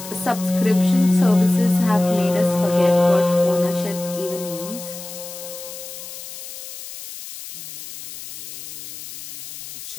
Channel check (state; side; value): noise; left; hiss, 12 dB below the sound